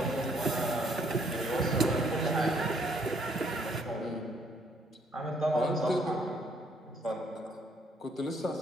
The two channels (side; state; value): both; normal; correlation 0.67